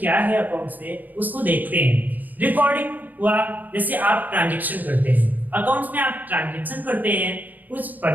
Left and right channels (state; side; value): late; left; 0.083 ms